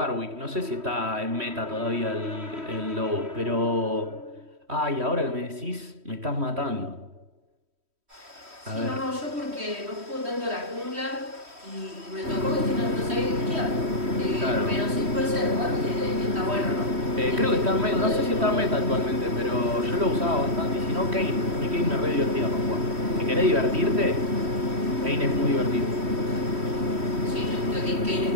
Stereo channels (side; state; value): left; late; 3.1 ms